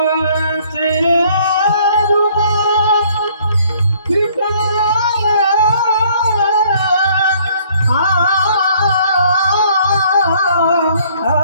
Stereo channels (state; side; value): inverted; both; correlation -0.61